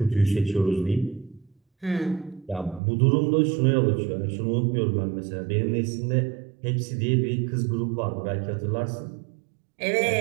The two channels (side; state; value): left; drops out; at 2.8 s